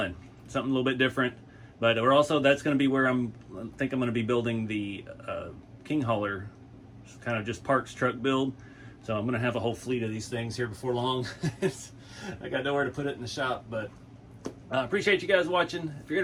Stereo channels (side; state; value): both; identical; correlation 1.00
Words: Something a little bit different. But we're also, that's going to be where I think I'm going to be building the King Hauler, kind of just parks truck build. So I'm going to have a whole fleet of these things here before long. I got nowhere to put it in the shop, but I appreciate you guys watching. If you're